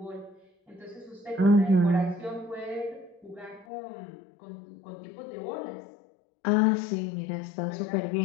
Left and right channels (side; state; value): right; drops out; at 3.7 s